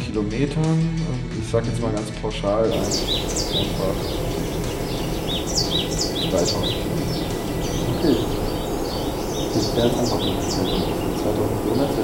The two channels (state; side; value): identical; both; correlation 1.00